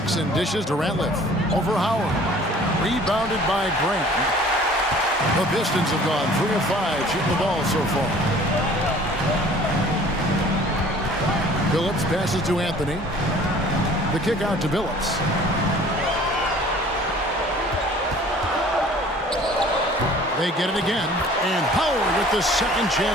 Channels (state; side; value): normal; both; correlation 0.50